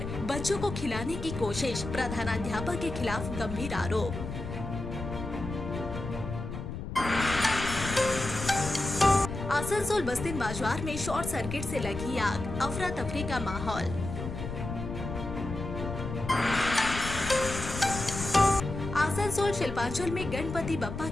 बच्चों को खिलाने की कोशिश, प्रधानाध्यापक के खिलाफ गंभीर आरोप। आसनसोल बस्तिन बाजार में शॉर्ट सर्किट से लगी आग, अफरा तफरी का माहौल। आसनसोल शिल्पांचल में गणपति बप्पा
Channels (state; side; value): noise; left; rumble, 7 dB below the sound